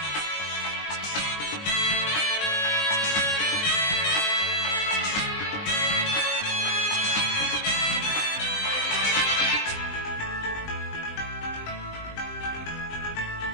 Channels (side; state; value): right; late; 20 ms